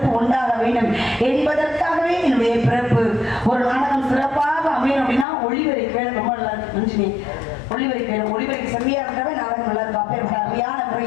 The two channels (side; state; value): right; drops out; at 5.2 s